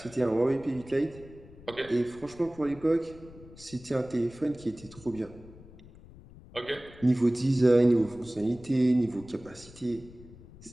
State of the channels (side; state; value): left; noise; rumble, 20 dB below the sound